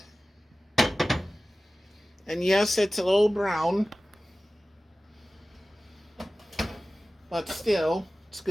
And yes, it's a little brown. But still, it's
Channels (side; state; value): both; normal; correlation 0.96